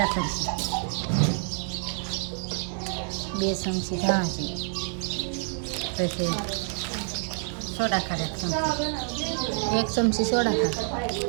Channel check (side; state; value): left; silent; 57 dB below the other